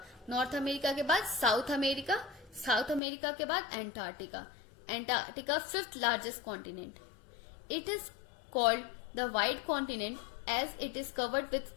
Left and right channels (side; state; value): right; drops out; at 3.0 s